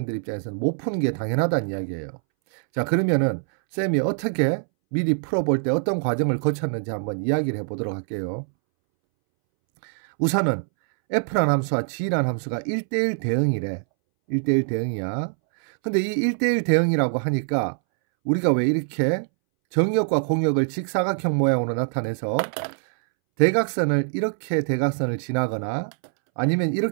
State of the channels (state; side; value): silent; left; 63 dB below the other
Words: 입장에서는 못 푸는 게 당연하다는 이야기예요. 자, 그러면은 쌤이 어떻게 미리 풀어볼 때 어떤 과정을 거쳤는지 한번 이야기를 해보도록 할게요. 우선은 f라는 함수와 g라는 함수가 1대1 대응이래. 1대1 대응이야. 근데 이 1대1 대응이라고 하니까 우리가 왜 이렇게 정역과 공역을 직사각형 모양으로 나타내서 대각선을 이렇게 대각선을 지나거나 아니면